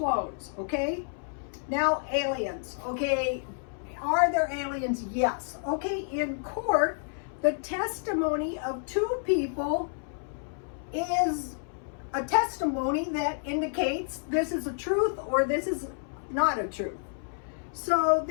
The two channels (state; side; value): silent; right; 58 dB below the other